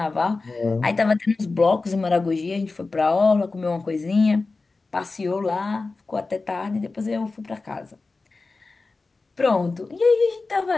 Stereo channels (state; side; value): quieter; right; 3.8 dB